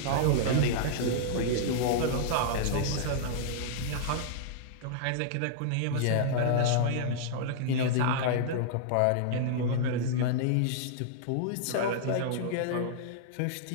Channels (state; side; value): different; both; correlation -0.02